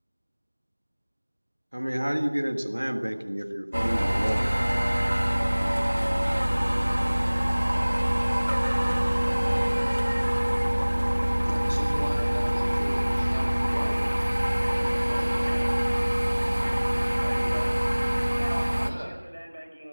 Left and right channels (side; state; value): both; inverted; correlation -1.00